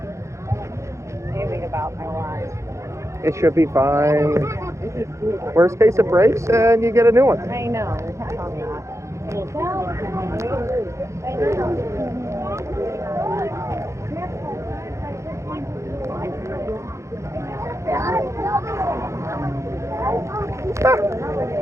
Anything about my life. It should be fine. Worst case, it breaks and you get a new one. I know, we kept on that.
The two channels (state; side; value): late; left; 0.14 ms